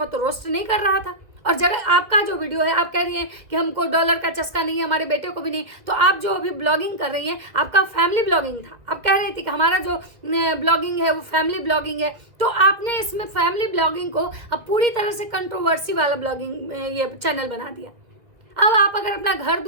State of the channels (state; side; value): late; left; 1.8 ms